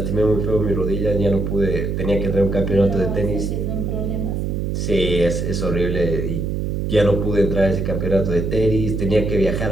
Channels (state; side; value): noise; right; hum, 1 dB below the sound